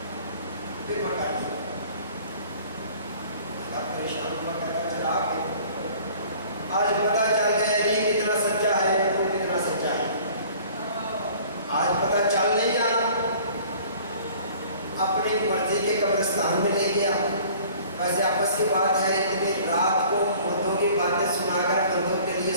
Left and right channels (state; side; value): inverted; both; correlation -0.50